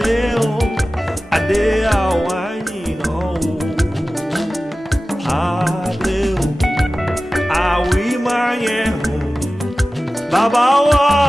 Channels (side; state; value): both; normal; correlation 0.96